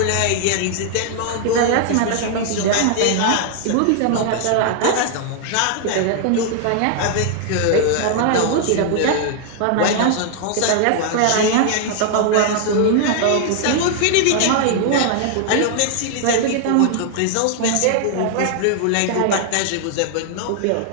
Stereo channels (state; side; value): different; both; correlation 0.00